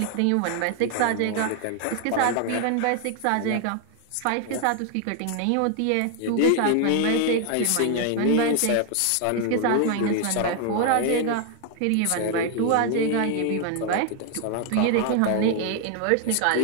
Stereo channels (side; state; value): both; different; correlation 0.00